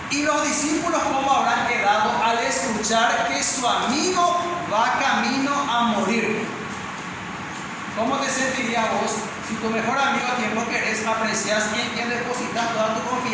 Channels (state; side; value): identical; both; correlation 1.00